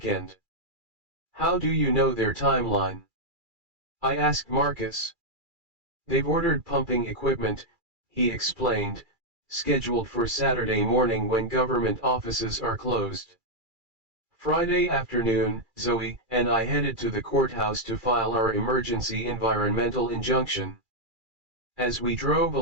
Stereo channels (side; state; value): left; late; 2.3 ms